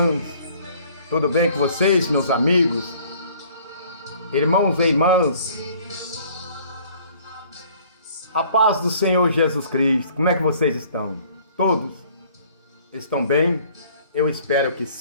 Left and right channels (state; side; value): inverted; both; correlation -0.56